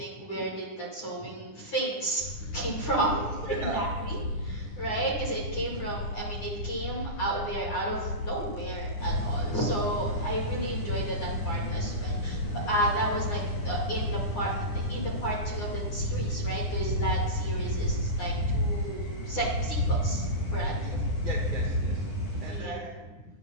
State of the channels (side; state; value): right; late; 9.8 ms